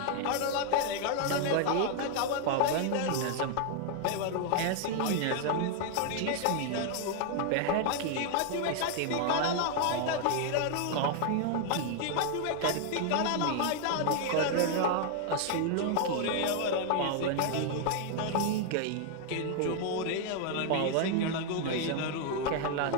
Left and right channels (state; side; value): different; both; correlation 0.00